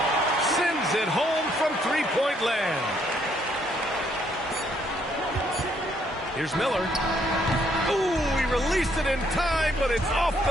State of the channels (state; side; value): normal; both; correlation 0.70